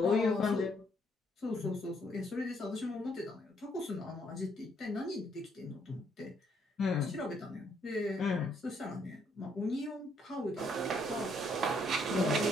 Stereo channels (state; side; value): normal; both; correlation 0.70